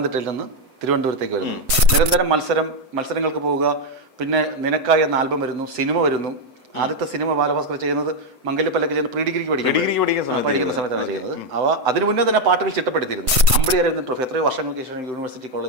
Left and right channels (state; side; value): late; left; 8.0 ms